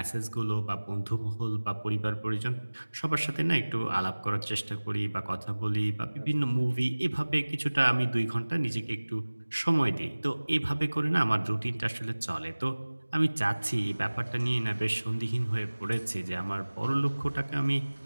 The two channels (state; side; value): inverted; both; correlation -1.00